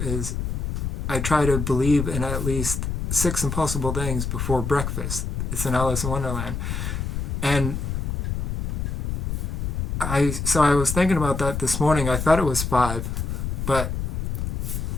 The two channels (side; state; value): left; noise; rumble, 2 dB below the sound